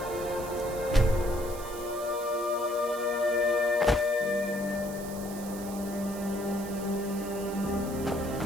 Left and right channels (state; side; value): noise; right; hiss, 14 dB below the sound